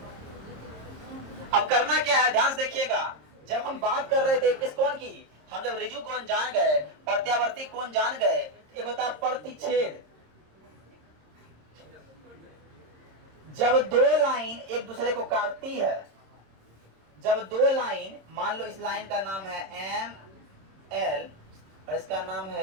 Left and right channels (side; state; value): left; late; 26 ms